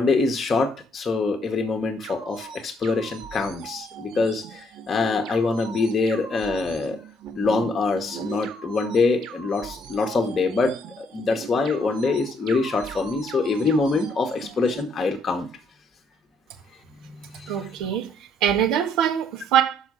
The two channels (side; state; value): both; normal; correlation 0.69